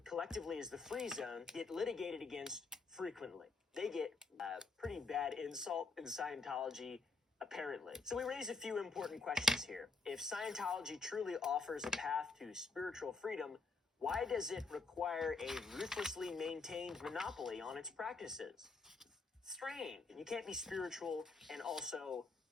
collectively as the Free Zone, get litigated against frequently. They get a pretty bad insult in Scientology, apparently. So we raise a few important questions here. If Scientology truly offers a path to spiritual freedom, why does it require a ruthlessly maintained monopoly on its practices? Strange. You can't be spiritual and also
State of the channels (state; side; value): quieter; right; 3.9 dB